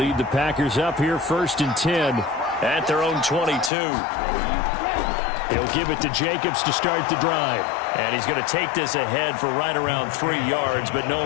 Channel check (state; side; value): drops out; right; at 3.7 s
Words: the Packers up here 1st and 10 at their own 22. He'll give it to Jacobs to start the drive. And he's going to take this ahead for right around 3 yards, but